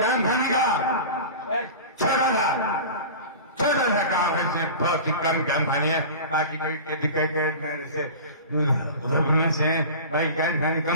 खाने का एक छोटा सा काम है, सिर्फ बहुत ही कम कैम खानी है, बाकी कभी मेरे से उधर घूमने से भाई कैम खानी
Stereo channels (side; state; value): both; inverted; correlation -0.34